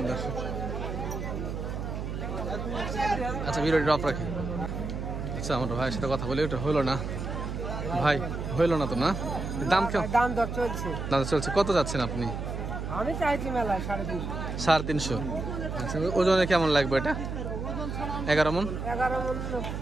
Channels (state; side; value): noise; right; hum, 5 dB below the sound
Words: দর্শক। আচ্ছা, ভিডিওটি ড্রপ রাখি। আচ্ছা, আমার ভাইয়ের সাথে কথা বলে, ওটা হলো না ভাই, হইলো না তো না? দাম কেমন? দাম দর চলছে। দাম চলছে। কত যাচ্ছেন আপনি? আমি চাইছি মেলায় 350। 350। আচ্ছা, ওজনে কেমন লাগবে এটা? 11 মন। 11 মন